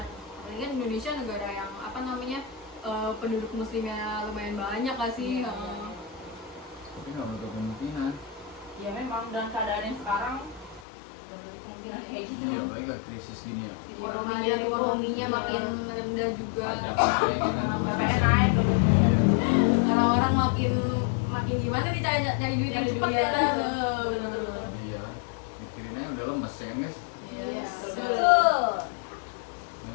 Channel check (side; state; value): right; drops out; at 10.9 s